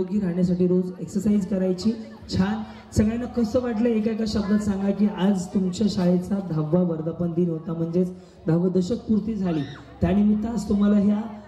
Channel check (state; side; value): identical; both; correlation 1.00